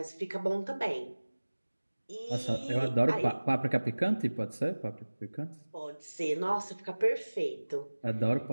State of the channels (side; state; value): both; inverted; correlation -1.00